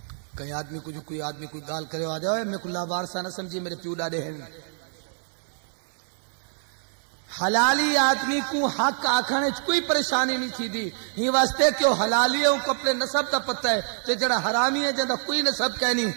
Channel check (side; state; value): left; silent; 57 dB below the other